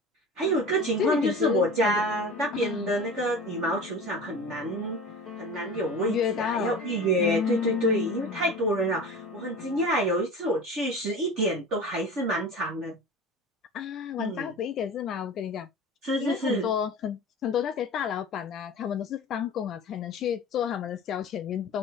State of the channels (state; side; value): normal; both; correlation 0.35